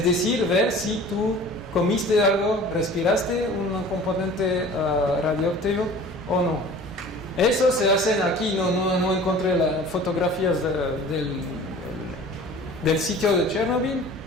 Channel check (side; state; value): both; normal; correlation 0.44